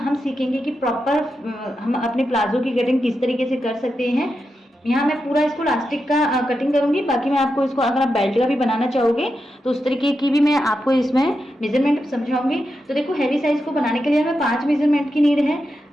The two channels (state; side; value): normal; both; correlation 0.88